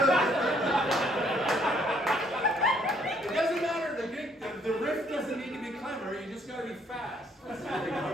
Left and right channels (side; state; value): both; normal; correlation 0.66